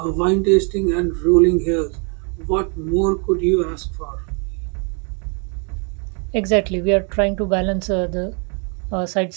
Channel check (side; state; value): left; quieter; 37.0 dB